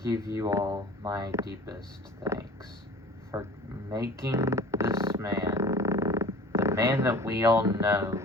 give you all my deepest thanks for making this man, the man that we all know,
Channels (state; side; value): normal; both; correlation 0.43